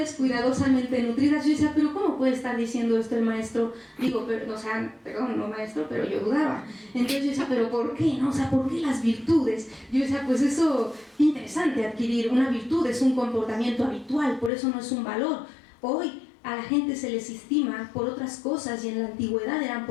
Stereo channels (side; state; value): right; drops out; at 14.5 s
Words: cuidadosamente nutridas. Yo decía, pero ¿cómo puede estar diciendo esto el maestro? Digo, pero, o sea, perdón, no maestro, pero yo dudaba. Entonces yo decía, pero ¿por qué? ¿No? O sea, ¿por qué las virtudes? Yo decía, pues eso, interesante adquirir una virtud, es un comportamiento habitual, por eso no es un valor. Hoy a la gente se les estima por otras cosas y en la antigüedad eran